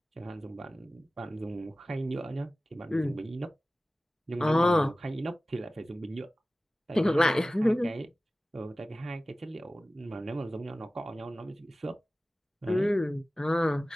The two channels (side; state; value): both; normal; correlation 0.97